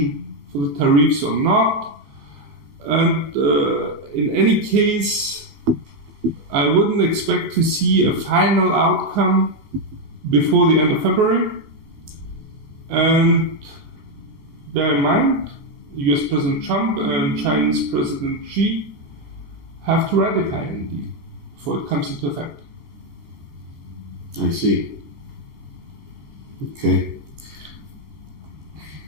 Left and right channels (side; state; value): left; late; 14 ms